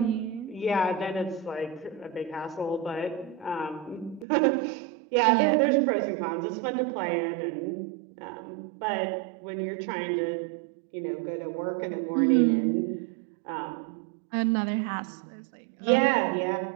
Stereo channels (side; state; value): left; drops out; at 4.2 s